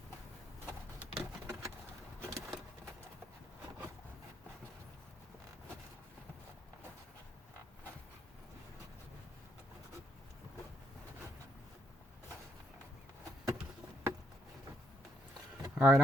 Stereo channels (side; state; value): both; normal; correlation 0.73